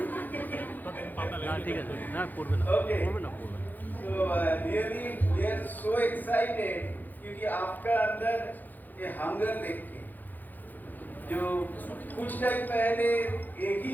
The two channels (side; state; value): right; late; 0.085 ms